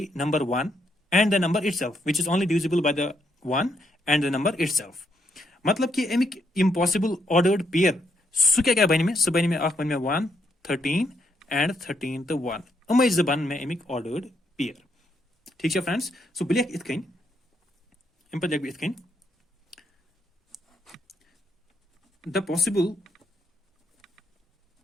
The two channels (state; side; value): normal; both; correlation 0.76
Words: number 1 and the number itself, which is only divisible by the 1 and the number itself. मतलब कि एमिक impossible ordered pair सु क्या बने में सु बने में आख बने में 1 13 and 13 the 1 अमे जबान में एमिक ordered pair. ठीक है फ्रेंड्स. सो बिलियक इतकन इन पर इतकन the possible